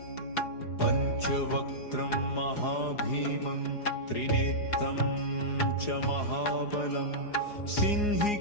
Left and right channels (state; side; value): late; right; 4.8 ms